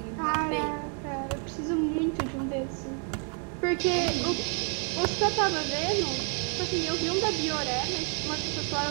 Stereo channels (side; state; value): left; quieter; 39.2 dB